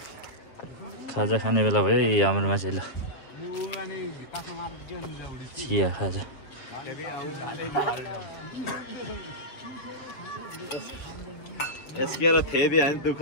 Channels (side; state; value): right; late; 7.6 ms